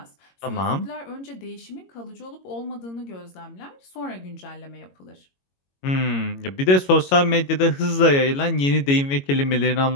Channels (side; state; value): right; late; 22 ms